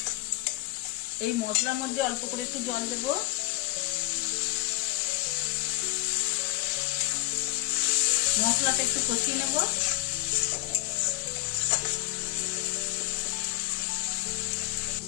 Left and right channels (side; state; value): right; quieter; 19.4 dB